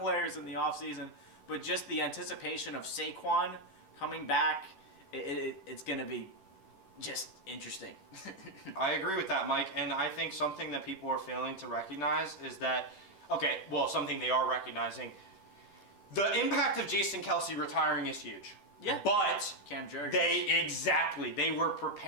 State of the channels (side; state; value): right; late; 10 ms